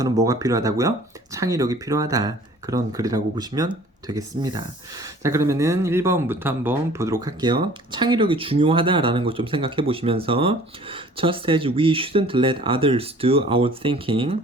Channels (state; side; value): normal; both; correlation 0.50